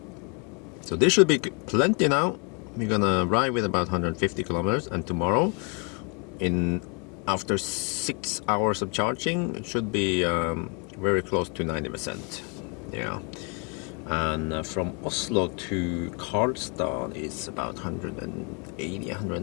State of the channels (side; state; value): right; quieter; 34.9 dB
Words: So this should be plenty now. We're gonna ride with about 150 kilometers, and tomorrow, after 6 hours of charging, it should be very close to 90%. Yeah. And from Oslo to Karlstad is about 180,